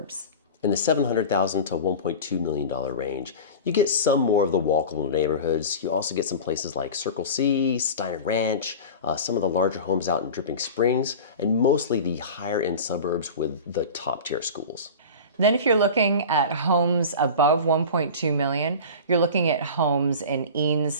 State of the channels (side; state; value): both; inverted; correlation -0.32